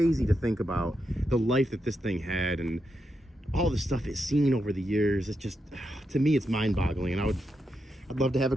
to think about the life that this thing had and all the stuff it's seen over the years. It's just, to me, it's mind-boggling, and I'd love to have a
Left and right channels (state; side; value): normal; both; correlation 0.84